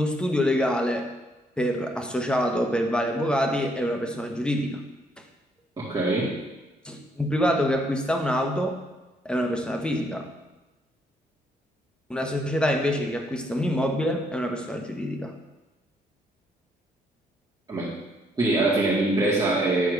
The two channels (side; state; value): both; normal; correlation 0.70